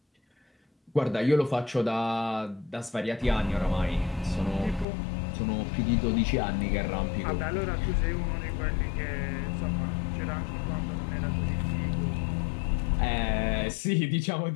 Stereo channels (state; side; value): drops out; right; at 4.9 s